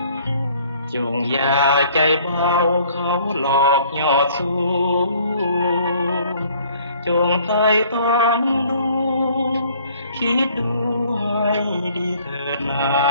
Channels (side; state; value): both; inverted; correlation -0.58